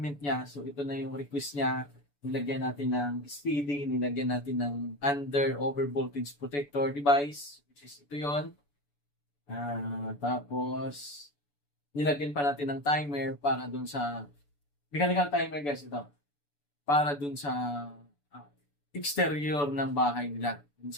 niya. So ito na yung request niya. Nilagyan natin ng speedy, nilagyan natin ng under over voltage protector device, which is ito yon. Tapos nilagyan pa natin ng timer para dun sa mechanical timer guys ito. Para dun sa exterior ng bahay nila.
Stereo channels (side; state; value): right; late; 6.9 ms